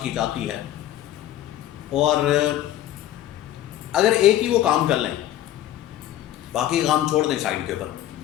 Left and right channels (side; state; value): right; quieter; 12.7 dB